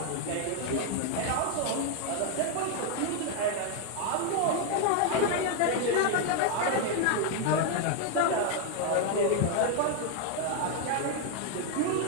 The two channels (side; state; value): both; different; correlation 0.01